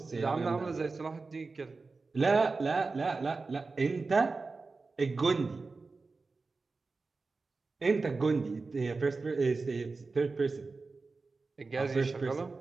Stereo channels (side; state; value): left; quieter; 4.0 dB